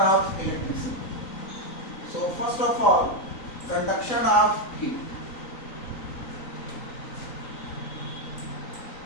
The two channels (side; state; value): right; late; 3.9 ms